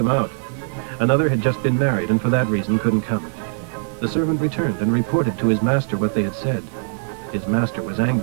out. Another had just been married and for that reason couldn't come. The servant returned and reported to his master what they had said. His master was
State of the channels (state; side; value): silent; left; digital silence